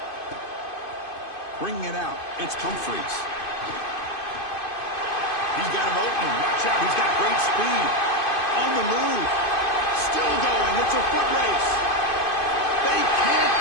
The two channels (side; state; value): right; late; 2.5 ms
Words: Bringing it out, it's Humphreys. He's got him open. Watch out, he's got great speed. On the move. Still going, it's a foot race. They can't